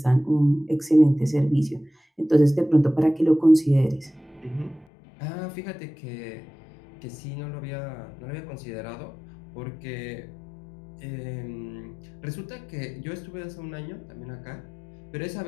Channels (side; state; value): right; drops out; at 4.9 s